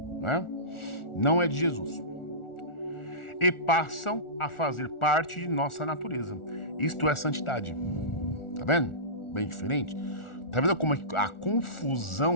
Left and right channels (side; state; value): right; late; 1.4 ms